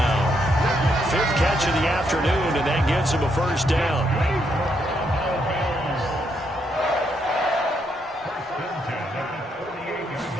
5th catch of the afternoon, and that gives him a first down.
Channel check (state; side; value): normal; both; correlation 0.77